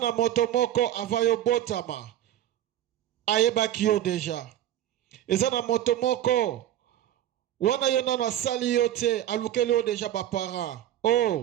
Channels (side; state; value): left; quieter; 12.1 dB